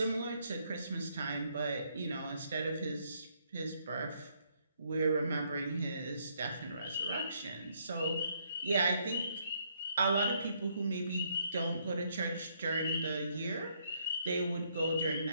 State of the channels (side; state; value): both; inverted; correlation -0.72